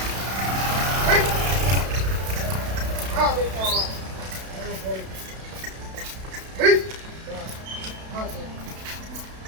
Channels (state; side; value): late; left; 32 ms